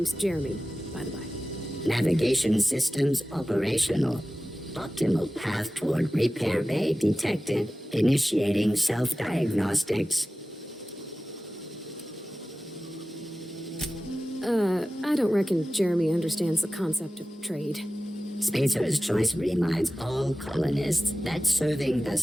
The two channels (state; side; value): normal; both; correlation 0.95